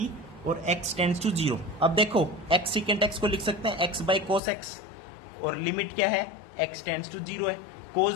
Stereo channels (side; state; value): right; drops out; at 4.4 s